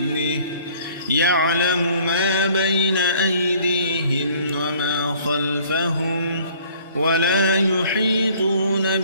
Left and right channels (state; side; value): inverted; both; correlation -0.56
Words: يعلم ما بين أيديهم وما خلفهم ولا يحيطون